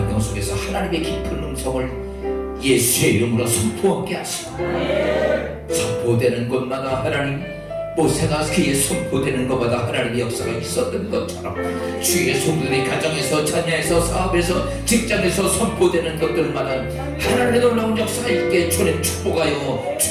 속에서 하나님의 깊은 음성을 예수의 이름으로 선포하게 하시고 선포되는 곳마다 하나님, 모세가 그의 선포되는 것마다 하나님의 역사가 있었던 것처럼 주의 성도들이 가정에서, 자녀에서, 사업에서, 직장에서 선포되는 것들마다 하나님의 놀라운 역사가 있게 주님 축복하여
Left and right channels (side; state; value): both; identical; correlation 1.00